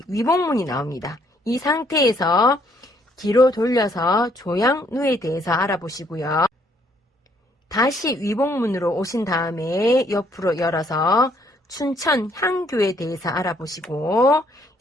위복문이 나옵니다. 이 상태에서 뒤로 돌려서 조양누에 대해서 알아보시고요. 다시 위복문으로 오신 다음에 옆으로 열어서 춘천 향교에 대해서 알아보시고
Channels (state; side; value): normal; both; correlation 0.67